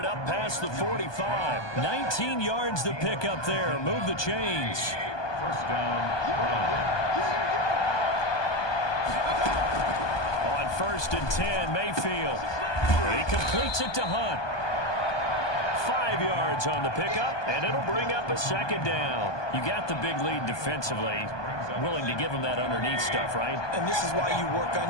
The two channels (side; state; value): right; late; 1.2 ms